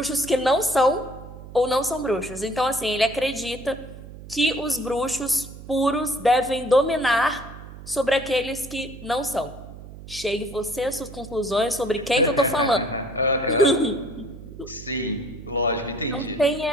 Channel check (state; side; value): noise; right; hum, 15 dB below the sound